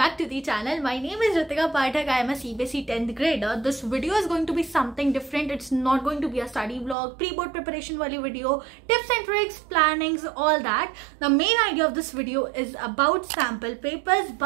to the channel. My name is Ritika Pathak. I am a CBSE 10th grader. This video is going to be something different. It's not going to be a study vlog, pre-board preparation wali video, tips and tricks, plannings, all that. The main idea of this video is about sample papers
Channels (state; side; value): drops out; left; at 7.0 s